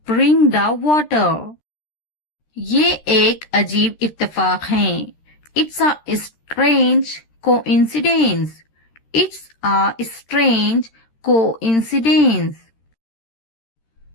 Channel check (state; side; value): late; right; 13 ms